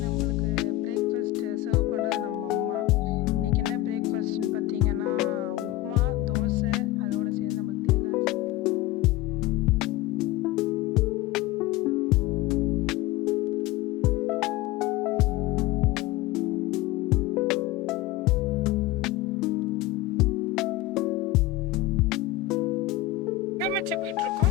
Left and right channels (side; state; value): right; quieter; 15.8 dB